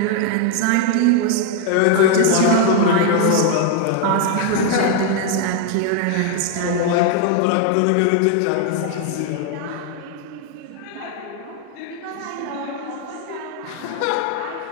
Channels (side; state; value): both; different; correlation 0.00